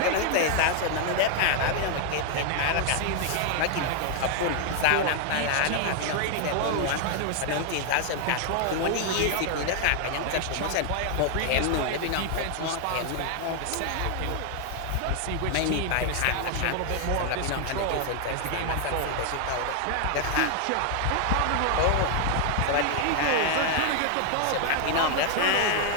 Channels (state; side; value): different; both; correlation 0.00